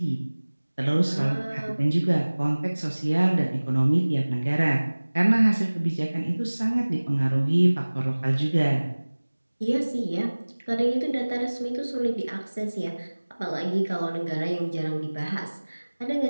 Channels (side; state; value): both; inverted; correlation -1.00